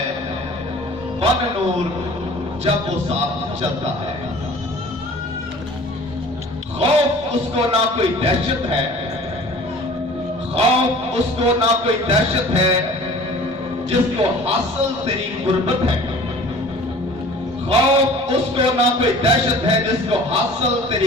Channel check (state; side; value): normal; both; correlation 0.46